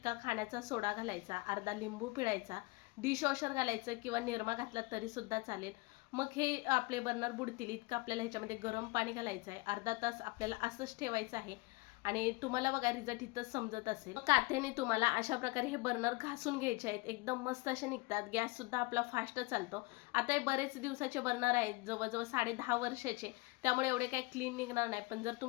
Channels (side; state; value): right; quieter; 24.5 dB